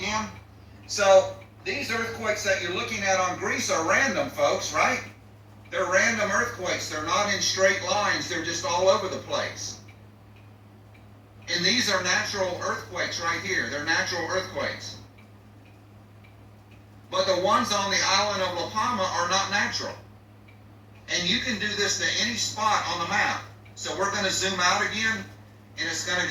So these earthquakes that you're looking at on Greece are random, folks, right? They're random earthquakes. They're not in straight lines. They're just all over the place. And these are natural earthquakes right here. They're natural earthquakes. But the ones on the island of La Palma are not natural. And you can do this to any spot on the map. So we're going to zoom out again, and it's going to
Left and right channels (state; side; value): identical; both; correlation 1.00